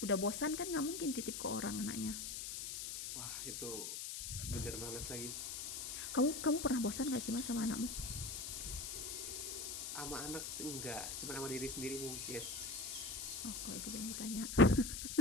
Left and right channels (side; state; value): left; noise; hiss, 5 dB below the sound